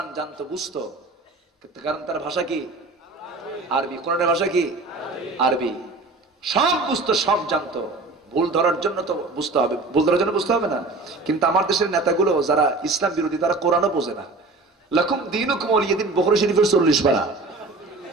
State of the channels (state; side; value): quieter; left; 3.4 dB